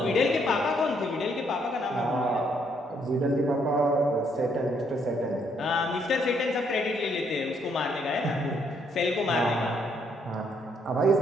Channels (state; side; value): normal; both; correlation 0.71